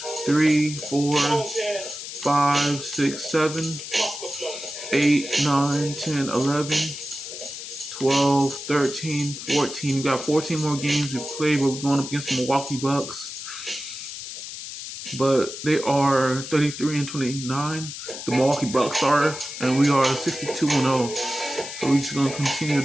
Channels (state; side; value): noise; left; hiss, 9 dB below the sound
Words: 3, 4, 5, 6, 7, 8, 9, 10, 11, 12, 13, 14. We got 14 more games we played, but we're going up against the Milwaukee Bucks. But they are 33-29. The Milwaukee Bucks are, and we are 62-0. So we're just gonna continue